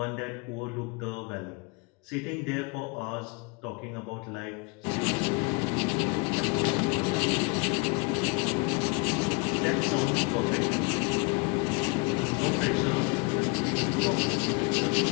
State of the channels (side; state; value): right; quieter; 30.3 dB